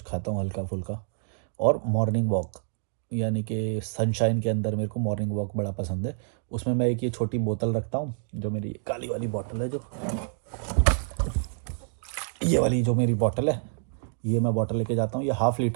खाता हूँ हल्का फुल्का। और मॉर्निंग वॉक, यानी कि सनशाइन के अंदर मेरे को मॉर्निंग वॉक बड़ा पसंद है। उसमें मैं एक ये छोटी बोतल रखता हूँ, जो मेरी काली वाली बोतल है, जो ये वाली जो मेरी बोतल है, ये मैं बोतल लेके जाता हूँ। ये 1/2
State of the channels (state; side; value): silent; left; digital silence